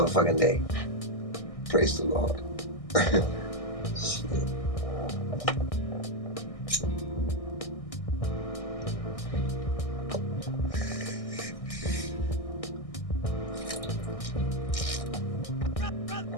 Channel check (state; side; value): late; right; 1.6 ms